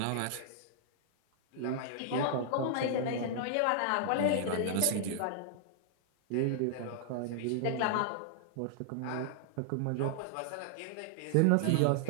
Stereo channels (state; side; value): different; both; correlation -0.01